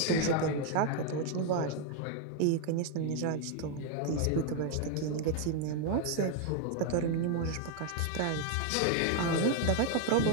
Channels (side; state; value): both; different; correlation 0.01